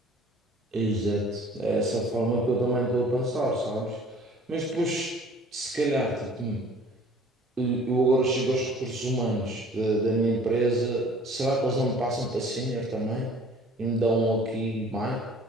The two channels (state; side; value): normal; both; correlation 0.51